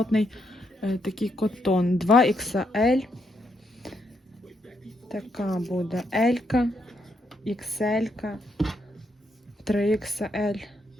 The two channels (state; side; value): normal; both; correlation 0.78